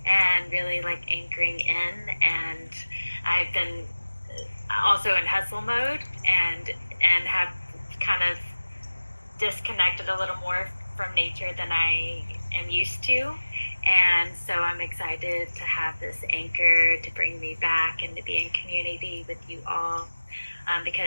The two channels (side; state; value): both; inverted; correlation -1.00